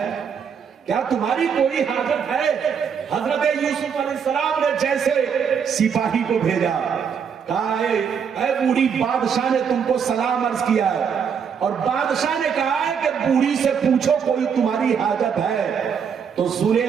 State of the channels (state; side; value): quieter; left; 7.0 dB